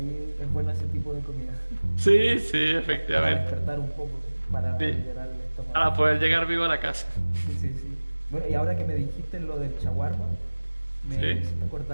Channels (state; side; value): inverted; both; correlation -1.00